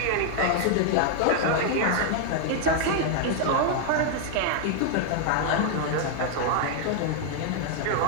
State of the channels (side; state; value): both; different; correlation 0.00